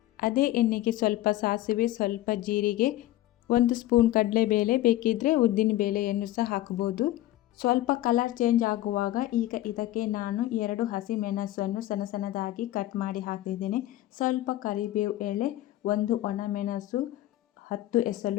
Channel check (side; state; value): right; quieter; 15.0 dB